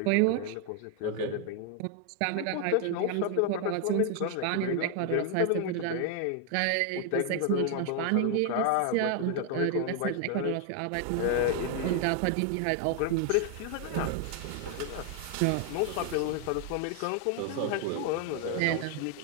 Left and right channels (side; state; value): both; different; correlation 0.00